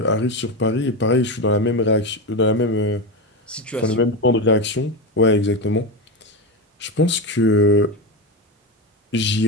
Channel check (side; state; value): both; normal; correlation 0.16